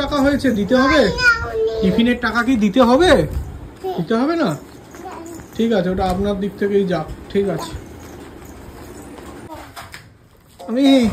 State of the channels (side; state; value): both; identical; correlation 1.00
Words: টাকা হয়েছে? দিতে হবে? টিফিনের টাকা কি দিতে হবে? দিতে হবে না? ঠিক আছে, ওটা আপনার দিক থেকেই যাক। ঠিক আছে। আমি